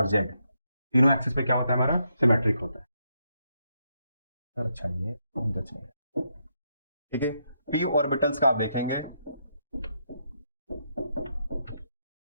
z तीनों एक्सिस पे क्या होता है हमारा, सिमेट्रिक होता है। अच्छा ये ठीक है। p ऑर्बिटल्स का आप देखेंगे,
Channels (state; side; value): inverted; both; correlation -0.79